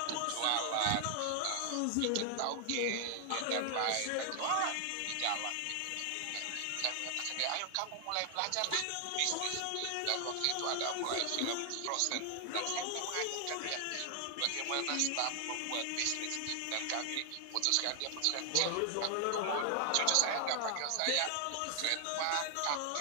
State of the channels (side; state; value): both; different; correlation 0.00